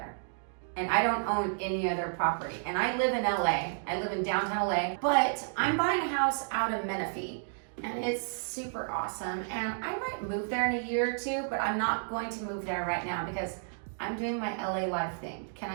And I don't own any other property. And I live in LA. I live in downtown LA, but I'm buying a house out of Menifee. And it's super awesome. And I might move there in a year or two, but I'm not going to move there right now because I'm doing my LA life thing. Can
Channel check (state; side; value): silent; left; digital silence